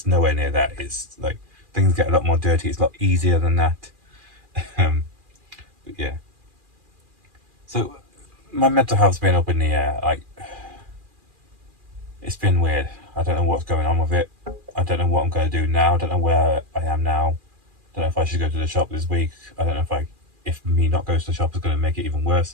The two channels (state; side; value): late; left; 2.4 ms